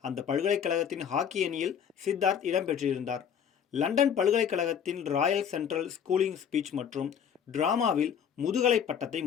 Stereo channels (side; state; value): right; quieter; 8.0 dB